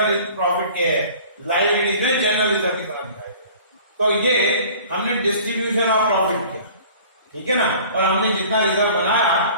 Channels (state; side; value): inverted; both; correlation -0.46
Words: प्रॉफिट के लायबिलिटी में जनरल रिजर्व की तरह दिखाई देगा। तो ये हमने डिस्ट्रीब्यूशन ऑफ प्रॉफिट किया, ठीक है ना? और हमने जितना रिजर्व